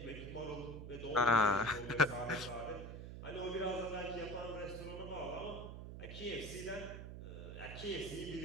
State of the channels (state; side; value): noise; right; hum, 9 dB below the sound